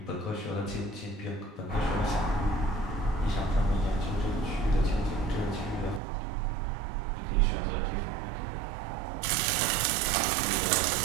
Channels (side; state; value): left; drops out; at 6.0 s